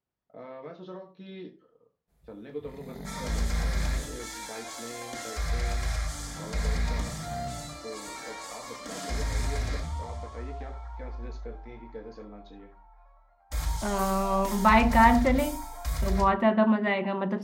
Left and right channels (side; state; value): both; identical; correlation 1.00